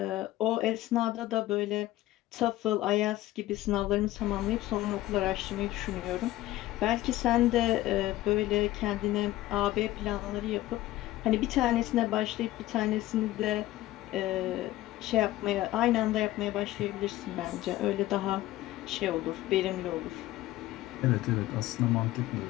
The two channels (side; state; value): right; quieter; 16.0 dB